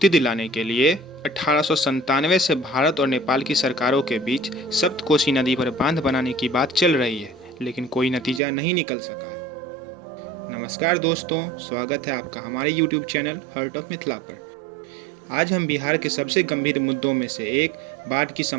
दिलाने के लिए 1897 से भारत और नेपाल की सरकारों के बीच सप्तकोशी नदी पर बांध बनाने की बात चल रही है, लेकिन कोई नतीजा नहीं निकल सका है। नमस्कार दोस्तों, स्वागत है आपका हमारे YouTube channel hurt of Mithila पर। आज हम बिहार के सबसे गंभीर मुद्दों में से एक बाढ़ की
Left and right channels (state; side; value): drops out; left; at 8.4 s